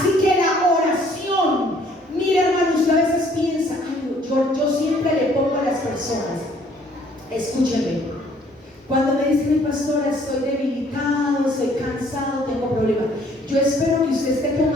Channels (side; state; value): both; normal; correlation 0.60